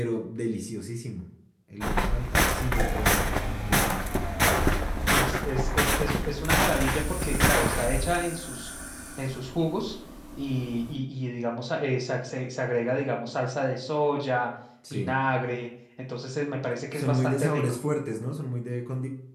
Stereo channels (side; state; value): both; identical; correlation 1.00